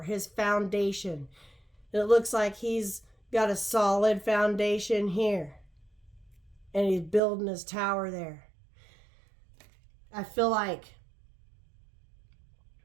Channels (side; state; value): left; drops out; at 7.2 s